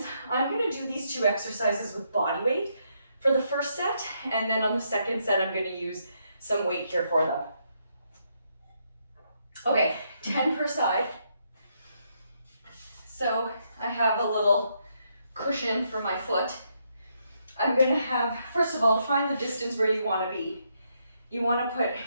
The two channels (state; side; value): inverted; both; correlation -0.76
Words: I'm gonna do these 2 exercises with body weight for the first set, and then on the second set, I'm gonna use some weight here for them. Okay, 10 per side. So I have a little cushion for my foot. I'm gonna have, first of all, to find the distance where you wanna be. You wanna